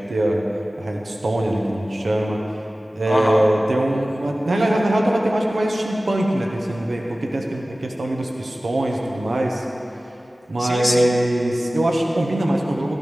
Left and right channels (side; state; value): both; normal; correlation 0.97